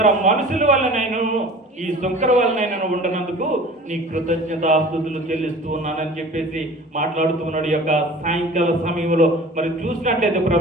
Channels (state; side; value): normal; both; correlation 0.42